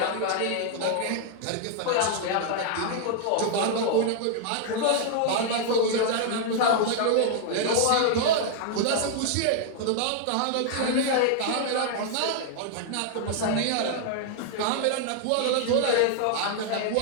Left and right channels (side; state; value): both; different; correlation 0.00